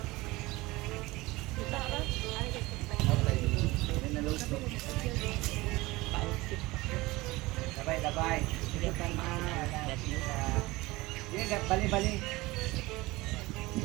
Dabay. Sige, bali-bali.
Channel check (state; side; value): quieter; left; 20.9 dB